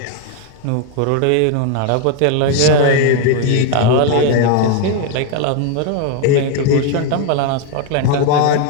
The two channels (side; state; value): both; different; correlation 0.01